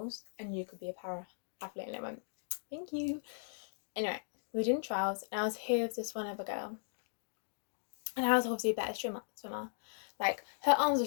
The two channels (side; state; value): right; silent; digital silence